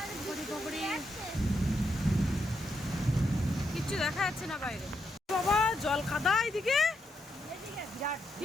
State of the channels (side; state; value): both; normal; correlation 0.81